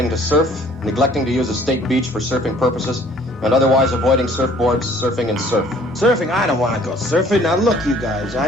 to surf, neglecting to use a state beach for surfing purposes, and otherwise avoiding surfboards, surfing, and surf. Surfing? I don't want to go surfing. Now look, you guys,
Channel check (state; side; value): normal; both; correlation 0.55